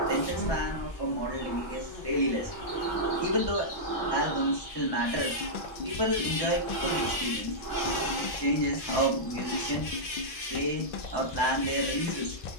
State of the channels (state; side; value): late; right; 1.6 ms